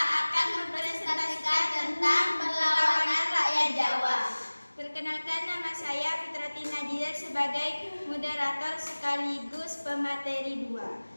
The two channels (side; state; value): both; inverted; correlation -1.00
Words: mempresentasikan tentang perlawanan rakyat Jawa. Perkenalkan, nama saya Fitrati Nadia sebagai moderator sekaligus pemateri